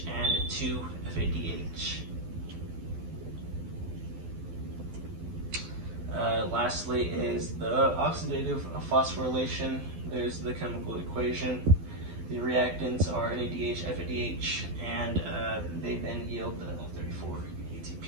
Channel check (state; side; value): late; left; 12 ms